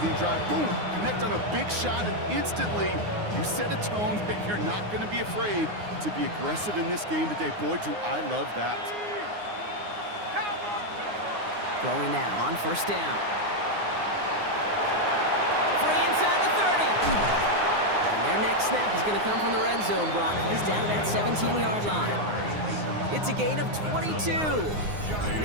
drive. Boom! Connect on a big shot and instantly you set a tone that you're not going to be afraid to be aggressive in this game today. Boy, do I love that. Throwing now on first down. Free inside the 30. And their next snap is going to come from the red zone, Brock. He's down at that 17-yard line. It's a gain of 22. And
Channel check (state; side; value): late; left; 9.6 ms